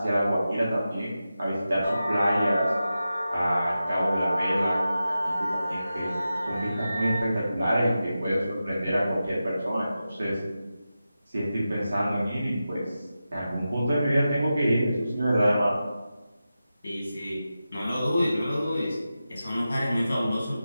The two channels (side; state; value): both; inverted; correlation -0.92